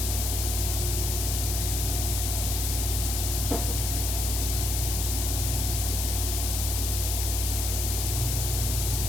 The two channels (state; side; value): noise; left; hiss, 1 dB below the sound